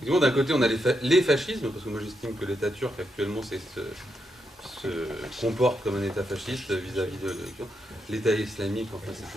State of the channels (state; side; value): normal; both; correlation 0.82